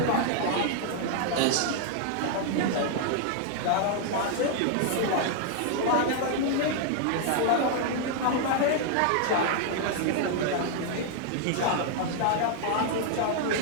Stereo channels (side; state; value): both; different; correlation 0.00